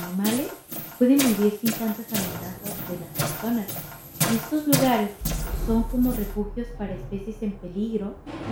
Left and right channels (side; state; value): both; identical; correlation 1.00